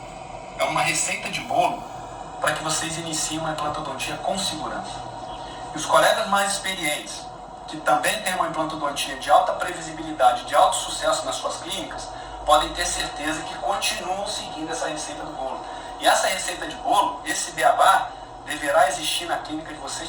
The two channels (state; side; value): identical; both; correlation 1.00